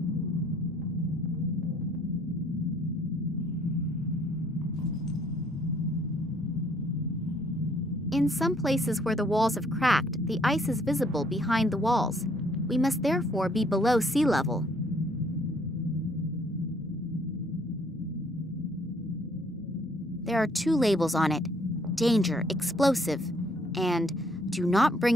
In some places where the walls have cracked, the ice is visible behind the walls. We must therefore be below sea level. There are 2 labels on it: danger, explosive, and do not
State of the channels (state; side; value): normal; both; correlation 0.64